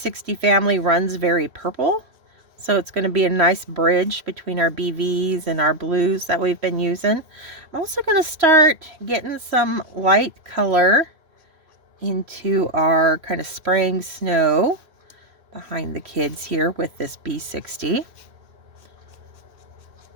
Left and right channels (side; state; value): left; late; 3.0 ms